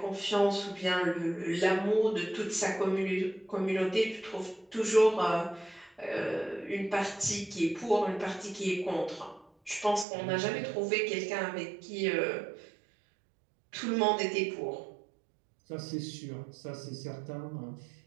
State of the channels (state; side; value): drops out; left; at 10.1 s